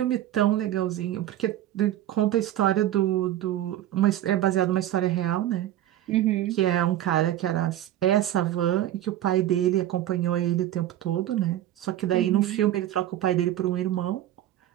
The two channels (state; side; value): quieter; left; 12.7 dB